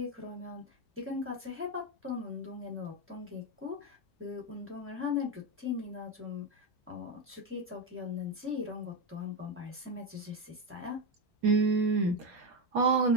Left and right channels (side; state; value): both; normal; correlation 0.11